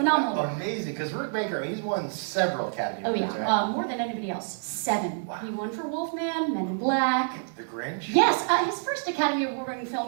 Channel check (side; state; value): left; silent; digital silence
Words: Amazing, because Rick Baker, he's won several Academy Oh Awards, yeah, right? more than anybody else. 7. Wow. He won for Wolfman, Men in Black. The Grinch? Yes, his first Academy Award-winning